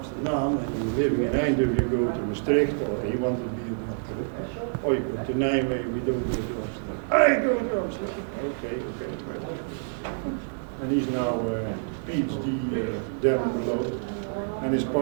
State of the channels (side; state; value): left; silent; digital silence